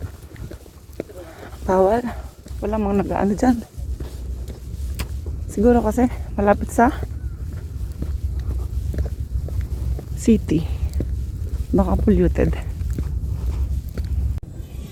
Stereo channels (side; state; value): both; identical; correlation 1.00